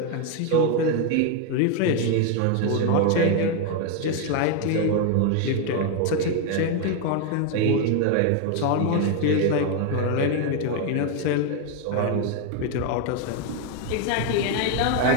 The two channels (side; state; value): both; different; correlation 0.01